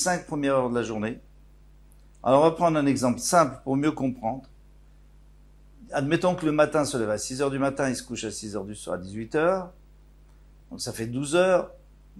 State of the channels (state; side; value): identical; both; correlation 1.00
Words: premières heures de la journée. Alors on va prendre un exemple simple pour mieux comprendre. Admettons que le matin se lève à 6 heures du matin, il se couche à 6 heures du soir, à 18 heures. Donc ça fait 12 heures.